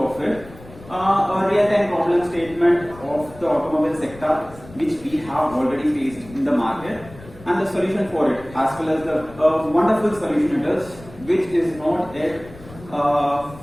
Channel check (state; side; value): noise; left; rumble, 19 dB below the sound